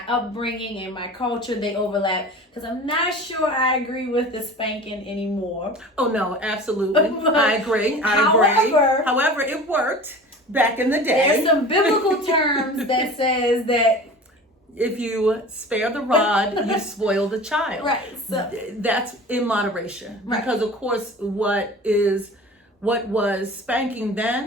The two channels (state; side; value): normal; both; correlation 0.38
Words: upbringing and my culture, they overlap, because I'm not sure I agree with the spanking anymore. Oh no, absolutely. I agree. However, it worked back in the day. There's some biblical terms that says that if you spare the rod, you spoil the child. Right. So that's in moderation. Right. Because of course what was spanking